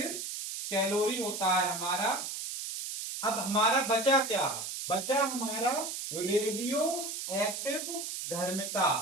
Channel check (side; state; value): right; noise; hiss, 5 dB below the sound